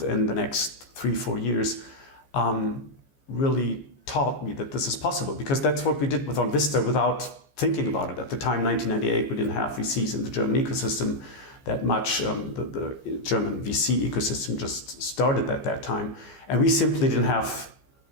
the next 3-4 years, really taught me that this is possible, because that's what we did with Vista without thinking about it. At the time, 1998, we didn't have VCs in the German ecosystem that much. The German VC ecosystem just started at that time. And we simply didn't have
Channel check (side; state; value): right; late; 15 ms